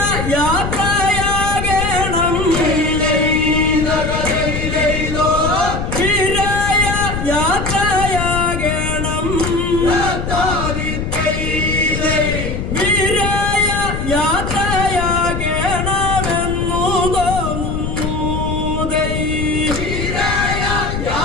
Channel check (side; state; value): left; noise; rumble, 3 dB below the sound